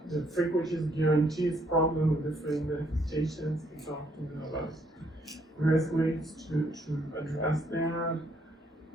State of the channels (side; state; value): both; normal; correlation 0.69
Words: The frequencies guarantees problem with different manifestations. We talked about various ways to address that,